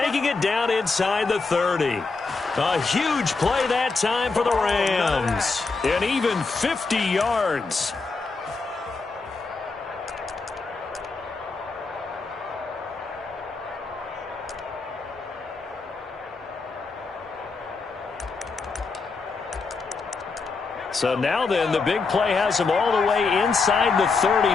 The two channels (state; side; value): quieter; right; 4.3 dB